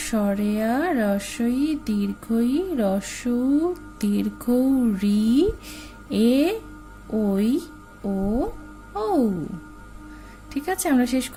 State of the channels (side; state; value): both; identical; correlation 1.00